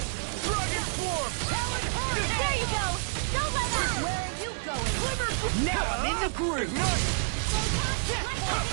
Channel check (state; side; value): silent; left; digital silence